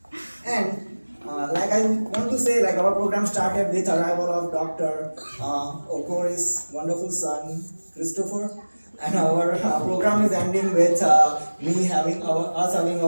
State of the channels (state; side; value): inverted; both; correlation -1.00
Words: And like I want to say, like our program started with arrival of Dr. Okori's wonderful son, Christopher. And our program is ending with us having